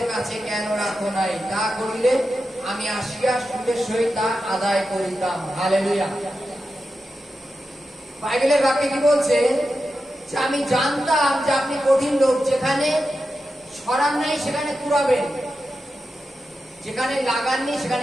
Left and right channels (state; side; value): normal; both; correlation 0.90